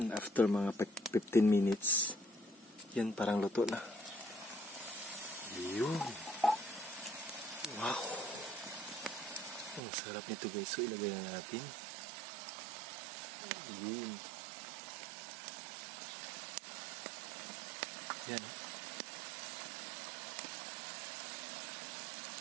after mga 15 minutes. Yan, parang luto na. Yun. Wow. Ang sarap nito guys. So ilagay na natin. Yun. Yan.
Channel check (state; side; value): drops out; left; at 9.8 s